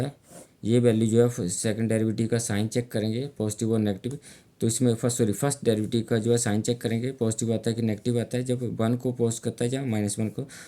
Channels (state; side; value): identical; both; correlation 1.00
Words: ये वैल्यू जो है सेकंड डेरिवेटिव का साइन चेक करेंगे, पॉजिटिव और नेगेटिव। तो इसमें फर्स्ट डेरिवेटिव का जो है साइन चेक करेंगे, पॉजिटिव आता है कि नेगेटिव आता है। जब 1 को पोस्ट करता है या माइनस 1 को,